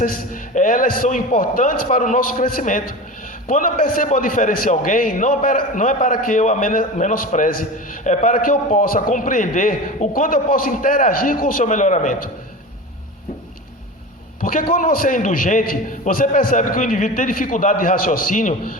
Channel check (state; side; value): normal; both; correlation 0.30